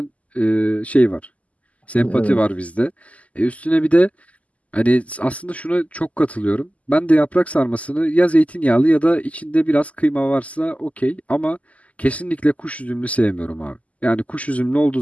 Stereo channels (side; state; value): right; late; 0.070 ms